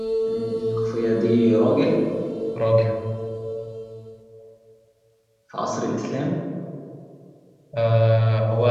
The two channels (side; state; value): both; identical; correlation 1.00